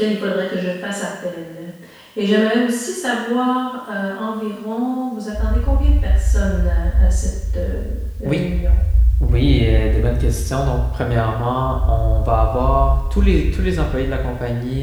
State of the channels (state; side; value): identical; both; correlation 1.00